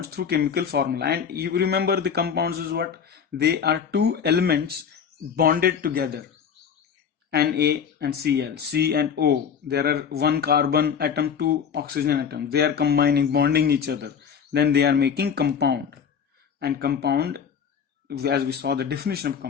through chemical formula, and you remember the compounds is what? They are 2 elements bonded together, Na and Cl, C and O. There are 1 carbon atom, 2 oxygen atoms. They are combining, bonding each other. Then they are making compound. And compound, as we saw the definition of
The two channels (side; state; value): right; quieter; 7.2 dB